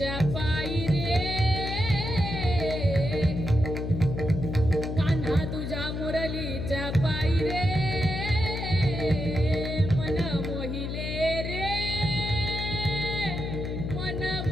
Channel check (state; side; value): noise; left; hum, 4 dB below the sound